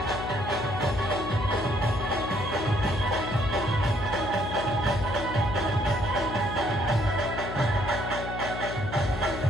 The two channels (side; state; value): left; noise; hum, 7 dB below the sound